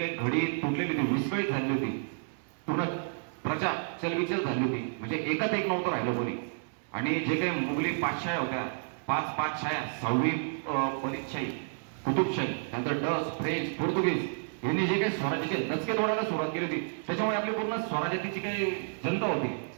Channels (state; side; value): silent; left; 57 dB below the other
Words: घडी तुटलेली होती, विस्कळीत झाली होती, पूर्ण प्रजा चलबिचल झाली होती, म्हणजे एकात एक नव्हतं राहिलं कोणी. आणि जे काही मुघली पातशाह्या होत्या, 5 पातशाह्या, 6वी बरीदशाही, कुतुबशाही, त्यानंतर डच, फ्रेंच, पोर्तुगीज यांनी जे काही स्वराज्याचे दचके तोडायला सुरुवात केली होती, त्याच्यामुळे आपली पूर्ण स्वराज्याची जी काही जनता होती